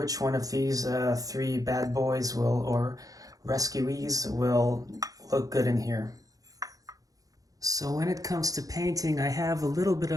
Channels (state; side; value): late; left; 0.17 ms